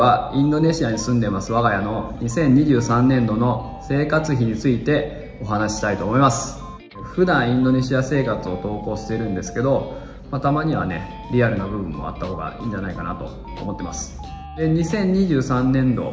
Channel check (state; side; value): identical; both; correlation 1.00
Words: インドネシアに住んでます我が家の2023年度の生活費についてお話ししたいと思います。普段インドネシア生活を投稿してるんですけど、たまにはね、リアルな部分もあった方がいいんじゃないかなと思ってます。で、2023年